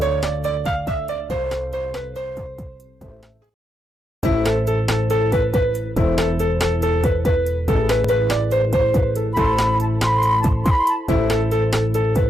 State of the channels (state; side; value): normal; both; correlation 0.85